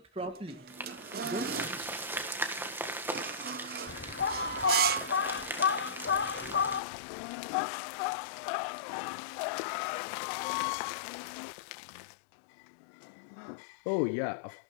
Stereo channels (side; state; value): right; drops out; at 6.8 s